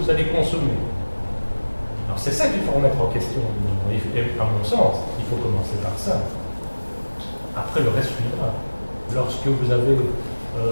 allez consommer. Alors c'est ça qu'il faut remettre en question. Et à mon sens, il faut commencer par ça. Après le reste suivra. Lorsque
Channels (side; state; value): both; inverted; correlation -1.00